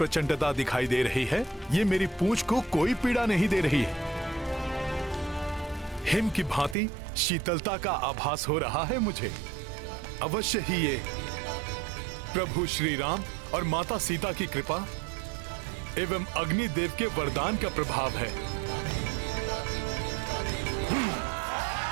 दिखाई दे रही है, ये मेरी पूंछ को कोई पीड़ा नहीं दे रही है। हिम की भांति शीतलता का आभास हो रहा है मुझे। अवश्य ही ये प्रभु श्री राम और माता सीता की कृपा एवं अग्निदेव के वरदान का प्रभाव है।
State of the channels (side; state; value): left; drops out; at 6.8 s